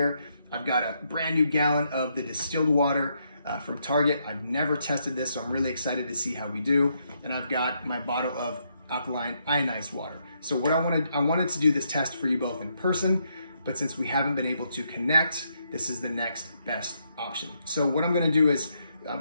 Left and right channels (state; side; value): inverted; both; correlation -0.77